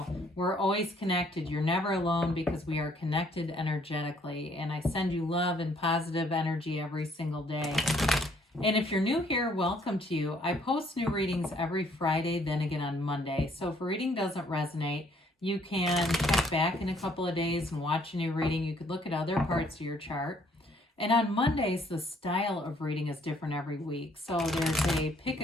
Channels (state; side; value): normal; both; correlation 0.64